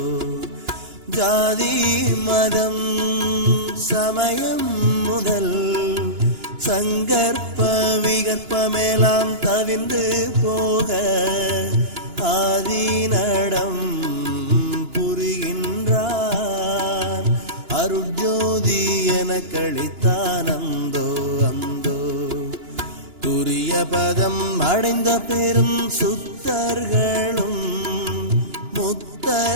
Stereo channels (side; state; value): left; late; 2.9 ms